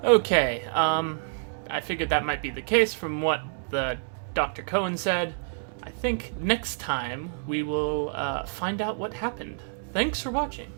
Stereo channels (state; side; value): silent; left; digital silence